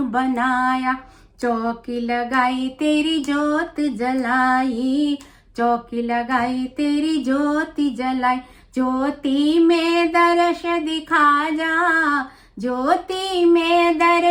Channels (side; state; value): both; identical; correlation 1.00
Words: बनाया, चौकी लगाई तेरी ज्योत जलाई, चौकी लगाई तेरी ज्योति जलाई। ज्योति में दर्श दिखा जा, ज्योति में